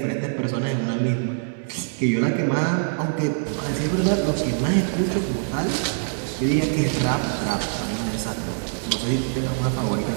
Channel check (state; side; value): silent; left; digital silence